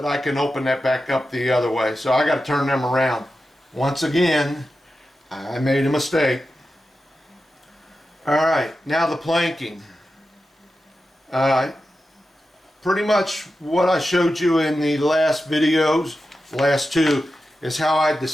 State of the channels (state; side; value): normal; both; correlation 0.91